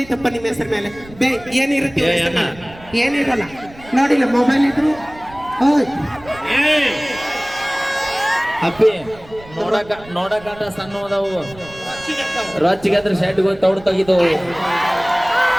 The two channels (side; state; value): right; noise; rumble, 20 dB below the sound